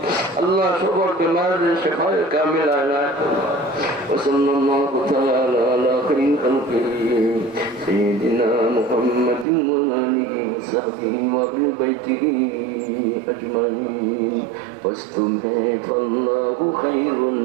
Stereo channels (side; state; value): left; drops out; at 9.5 s